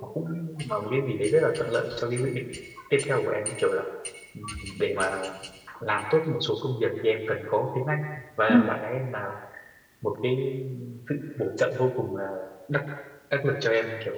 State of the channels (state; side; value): identical; both; correlation 1.00